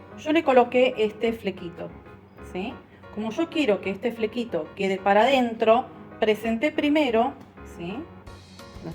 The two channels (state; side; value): identical; both; correlation 1.00